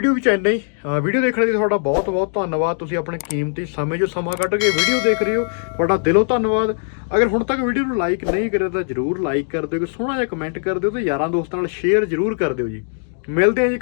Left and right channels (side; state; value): right; silent; digital silence